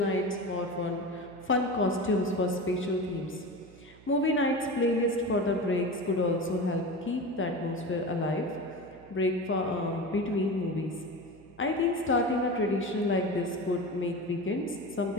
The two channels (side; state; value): right; noise; hum, 23 dB below the sound